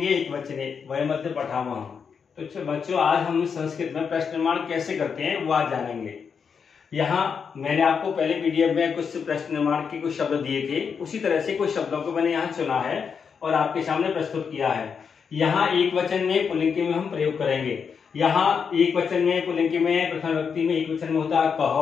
एकवचने वयम् अद्य पठामः। तो बच्चों आज हम संस्कृत में प्रश्न निर्माण कैसे करते हैं वो आज जानेंगे। यहाँ मैंने आपको पहले पीडीएफ में कुछ प्रश्न निर्माण के कुछ शब्द दिए थे, उसी तरह से कुछ शब्दों को मैंने यहाँ चुना है और आपके सामने प्रस्तुत किया है। यहाँ एक वचन में पुल्लिंग में हम प्रयोग करेंगे। यहाँ एक वचन में पुल्लिंग में प्रथम व्यक्ति में एक वचन में होता है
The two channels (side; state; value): right; quieter; 6.3 dB